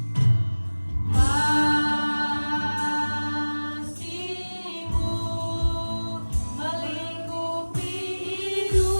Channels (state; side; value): inverted; both; correlation -1.00